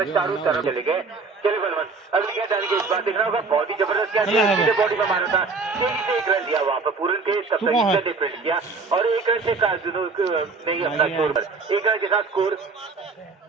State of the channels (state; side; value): quieter; left; 4.3 dB